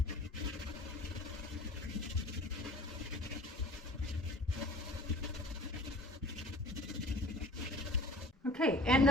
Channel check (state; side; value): normal; both; correlation 0.46